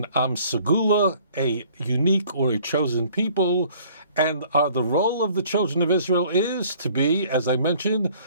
Am Segula, a unique or a chosen people, and the role of the children of Israel is to be, as I mentioned,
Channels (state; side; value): inverted; both; correlation -0.56